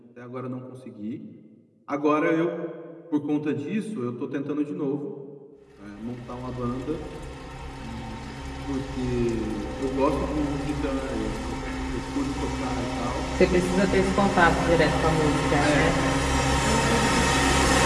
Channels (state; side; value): identical; both; correlation 1.00